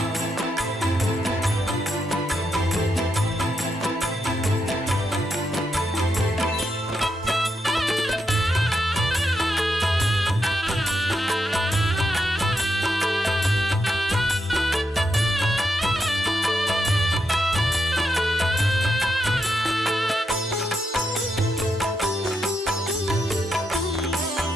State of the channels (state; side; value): normal; both; correlation 0.83